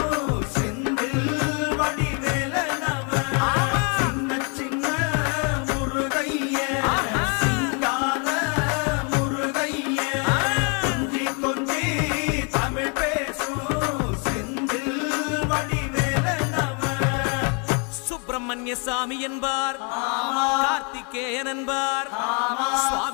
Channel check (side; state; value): right; quieter; 36.3 dB